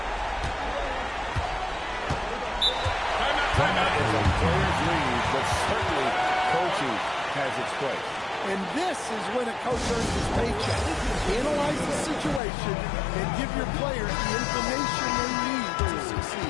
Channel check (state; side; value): drops out; right; at 12.4 s